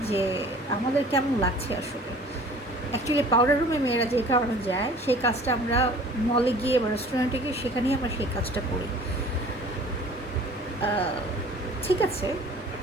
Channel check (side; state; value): both; normal; correlation 0.48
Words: যে আমাদের কেমন লাগছে আসলে। অ্যাকচুয়ালি পাউডার রুমে মেয়েরা যে কারণে যায়, সেই কাজটা আমরা মলে গিয়ে বা রেস্টুরেন্টে গিয়ে সেখানেই আমরা সেই কাজটা করি। ঠিক আছে,